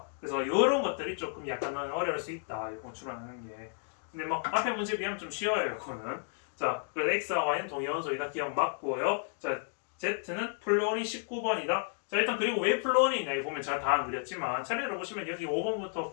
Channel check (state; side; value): silent; right; 56 dB below the other